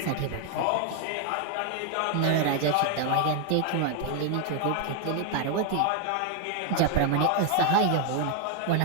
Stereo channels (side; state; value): both; different; correlation 0.01